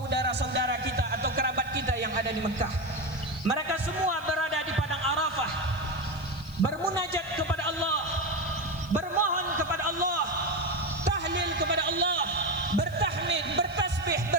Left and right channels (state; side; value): noise; left; hiss, 23 dB below the sound